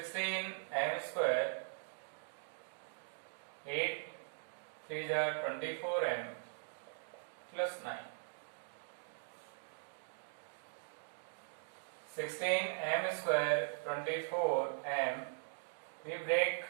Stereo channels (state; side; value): silent; left; digital silence